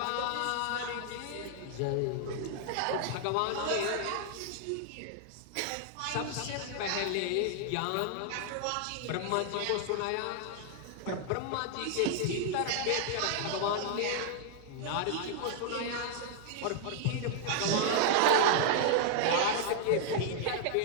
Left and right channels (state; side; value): different; both; correlation 0.00